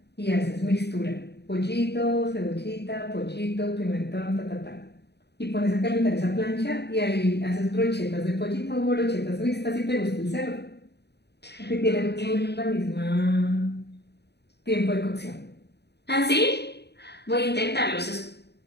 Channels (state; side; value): late; right; 0.49 ms